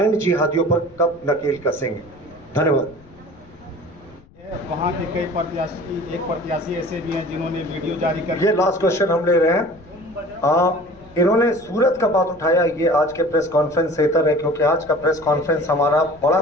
जिहादियों पर कब नकेल कसेंगे? धन्यवाद। वहाँ के कई प्रत्याशी, एक प्रत्याशी ऐसे भी हैं जिन्होंने वीडियो जारी कर, ये लास्ट क्वेश्चन हम ले रहे हैं। इन्होंने सूरत का बात उठाया, ये आज के प्रेस कॉन्फ्रेंस से इतर है, क्योंकि आज का प्रेस कॉन्फ्रेंस हमारा बड़ा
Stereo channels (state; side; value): noise; left; rumble, 25 dB below the sound